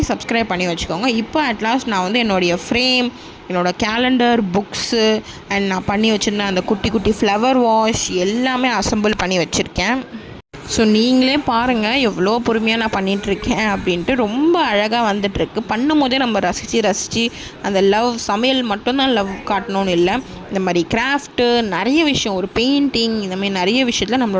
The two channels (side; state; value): both; identical; correlation 1.00